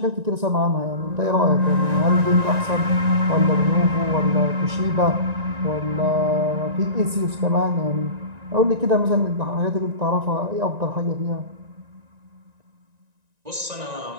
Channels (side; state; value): left; late; 1.9 ms